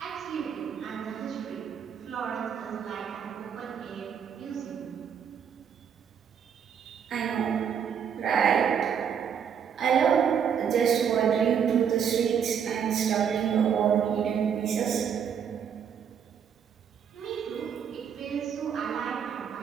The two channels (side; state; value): left; quieter; 7.8 dB